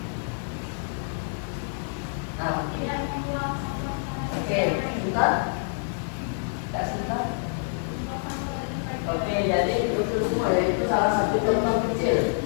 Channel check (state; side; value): silent; right; 60 dB below the other